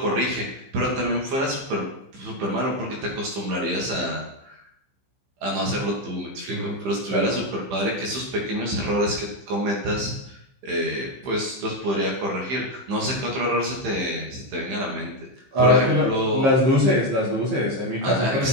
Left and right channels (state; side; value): late; left; 15 ms